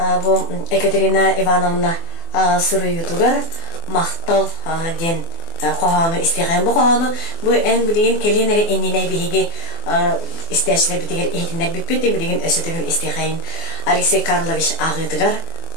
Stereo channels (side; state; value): right; late; 24 ms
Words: bu Екатерина Ивановна Суруютугар мактал ден qohanu isteygen bu qohanu bu en bilgin kelinleri enine bihi isteşler bitiger ehtinler bitpeti bilgin ösütügün isteygen Alexey Karlovich ağıdıgar